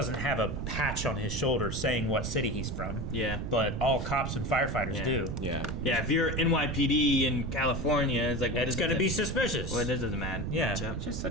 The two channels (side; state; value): right; noise; rumble, 4 dB below the sound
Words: have a patch on his shoulder saying what city he's from. Yeah. But all cops and firefighters do. Yeah. Yeah, if you're NYPD in California, it's like it's going to be suspicious. Well, it doesn't matter. Yeah. It's just